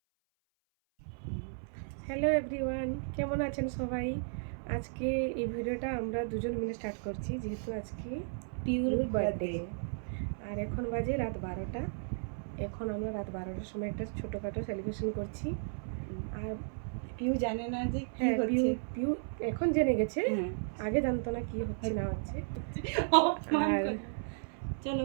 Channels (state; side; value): silent; left; 55 dB below the other